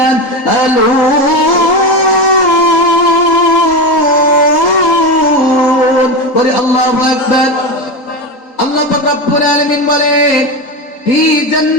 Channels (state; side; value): late; right; 3.8 ms